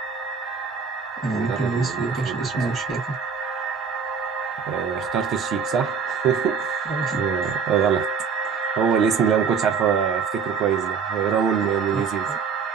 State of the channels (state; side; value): quieter; left; 6.0 dB